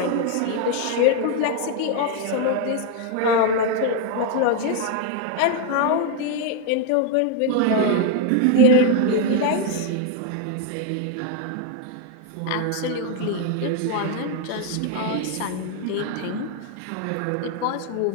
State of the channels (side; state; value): both; different; correlation 0.00